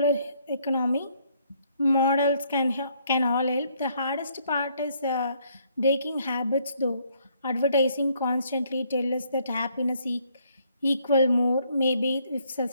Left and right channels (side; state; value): both; inverted; correlation -0.68